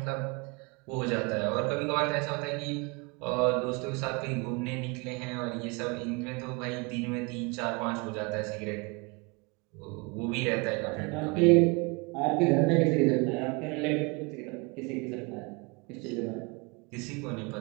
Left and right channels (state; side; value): quieter; left; 28.9 dB